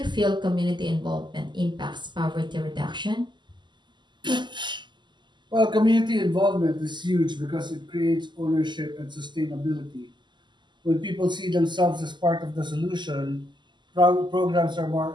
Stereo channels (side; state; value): left; late; 0.22 ms